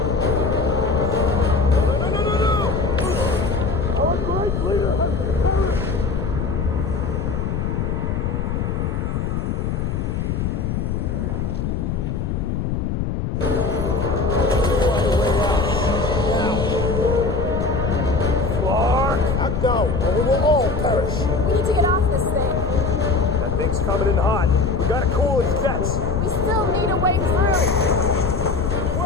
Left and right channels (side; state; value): left; noise; rumble, 1 dB below the sound